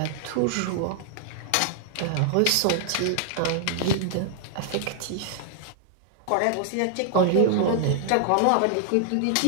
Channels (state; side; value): different; both; correlation -0.01